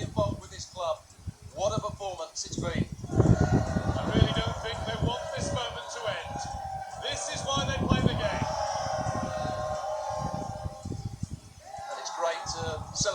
involved with this club. What a performance it's been. I really don't think they want this moment to end. This is why they play the game. And it's great to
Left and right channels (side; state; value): both; identical; correlation 1.00